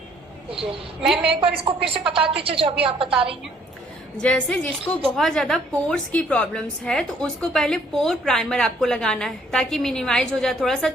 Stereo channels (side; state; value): both; normal; correlation 0.63